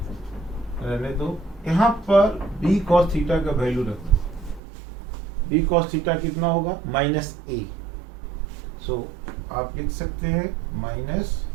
रहने दो। यहाँ पर b cos थीटा का वैल्यू रखो। b cos थीटा कितना होगा? Minus a। सो आप लिख सकते हैं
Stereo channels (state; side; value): drops out; left; at 4.6 s